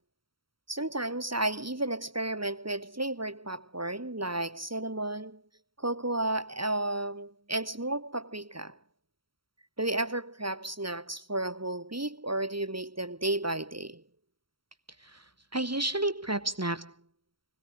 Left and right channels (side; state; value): left; late; 0.74 ms